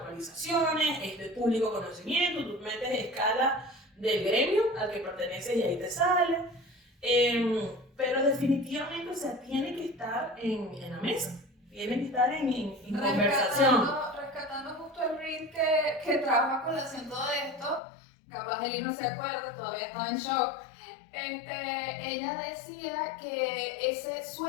es de público conocimiento, tú metes escala del gremio al que perteneces y ahí te sale. Pero definitivamente, o sea, tiene que estar en la mesa, tiene que estar en conversación. Rescatando justo el reel que trabaja con el acento de esto, capaz Eli no se acuerda, todavía estaba en shock. Ella decía que ese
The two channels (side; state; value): right; drops out; at 17.8 s